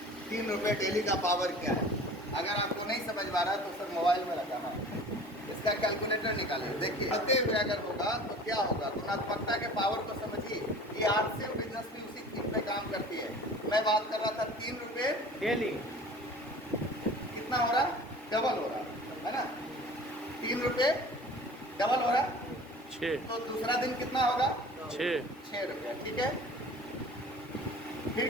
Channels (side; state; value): both; normal; correlation 0.43